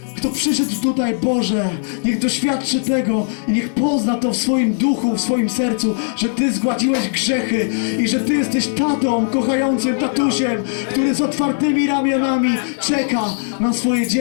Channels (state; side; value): silent; right; 67 dB below the other